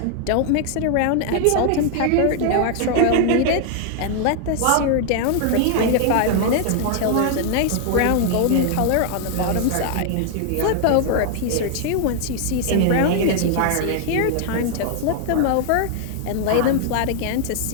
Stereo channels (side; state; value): both; different; correlation 0.00